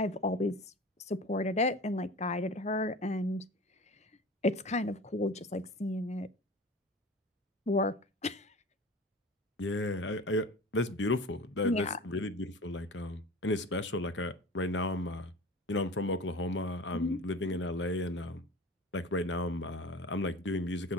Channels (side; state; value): both; normal; correlation 0.36